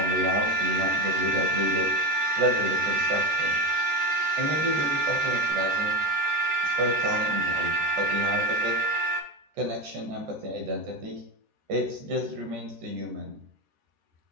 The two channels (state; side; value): late; left; 14 ms